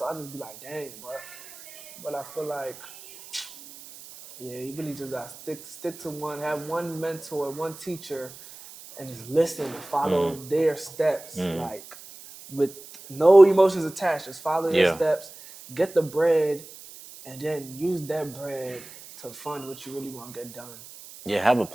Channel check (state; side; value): noise; right; hiss, 17 dB below the sound